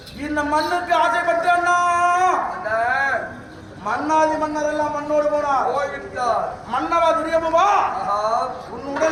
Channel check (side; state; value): both; identical; correlation 1.00